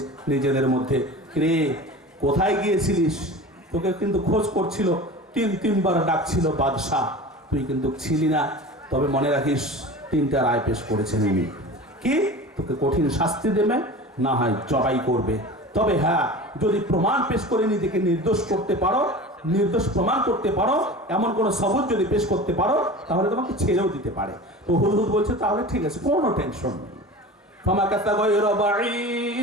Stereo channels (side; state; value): both; normal; correlation 0.35